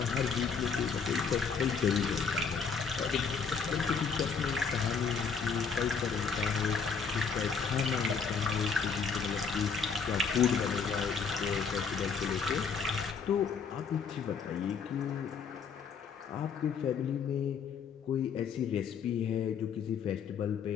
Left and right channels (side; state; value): right; quieter; 5.9 dB